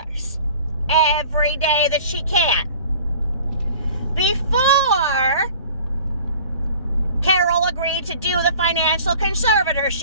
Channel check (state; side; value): inverted; both; correlation -0.46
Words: every day that she can. Before Carol agreed to do the financial